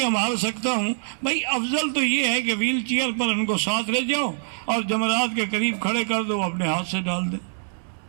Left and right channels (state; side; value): silent; left; digital silence